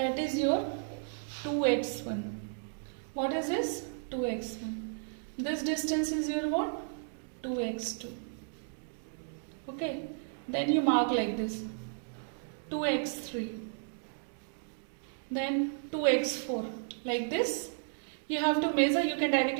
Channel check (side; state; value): left; silent; digital silence